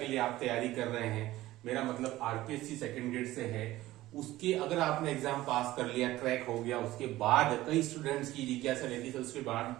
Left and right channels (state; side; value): quieter; left; 16.4 dB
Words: लिए आप तैयारी कर रहे हैं, मेरा मतलब आरपीएससी सेकंड ग्रेड से है, उसके अगर आपने एग्जाम पास कर लिया, क्रैक हो गया, उसके बाद कई स्टूडेंट्स की जिज्ञासा रहती है उसके बाद